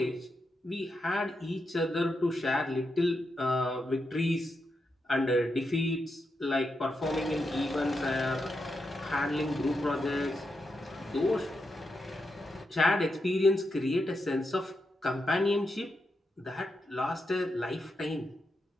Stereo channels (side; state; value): both; normal; correlation 0.85